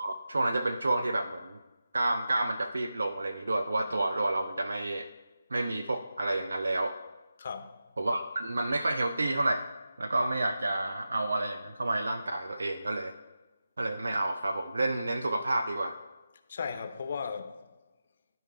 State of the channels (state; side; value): inverted; both; correlation -0.92